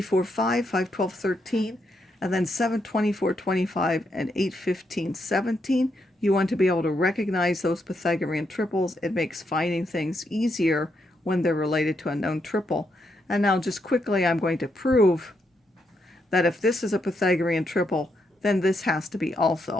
4, 5, 5, 12, 13. And then 7, 24, 25, and 8, 15, 17. You want to be able to recognize those Pythagorean triples. It makes finding things easier when they're related to a known triple. And now just quickly, I'm going to prove that if this is a Pythagorean triple, then this has to be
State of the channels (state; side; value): normal; both; correlation 0.80